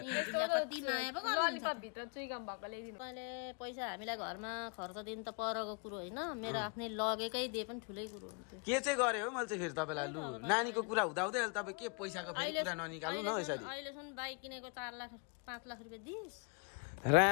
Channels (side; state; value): right; quieter; 35.9 dB